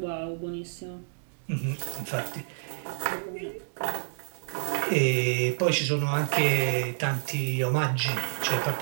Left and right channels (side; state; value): left; silent; digital silence